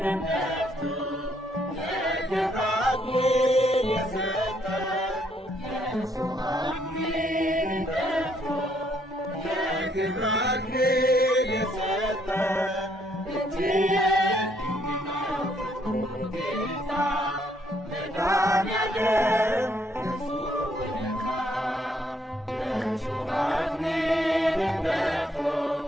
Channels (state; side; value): normal; both; correlation 0.70